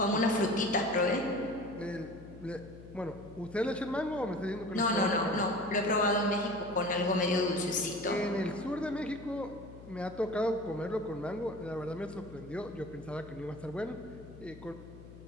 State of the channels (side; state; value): left; noise; hum, 17 dB below the sound